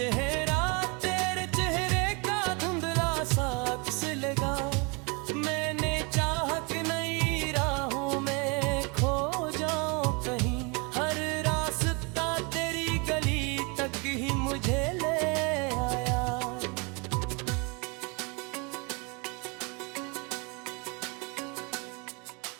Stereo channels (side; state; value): left; quieter; 30.9 dB